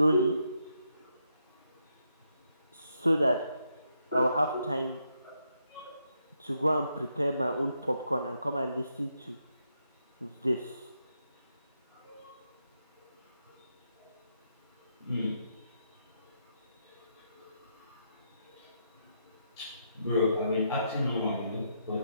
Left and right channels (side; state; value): both; inverted; correlation -0.79